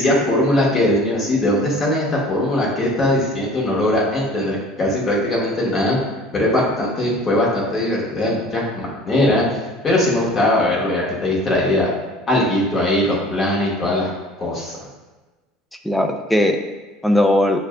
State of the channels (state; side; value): normal; both; correlation 0.50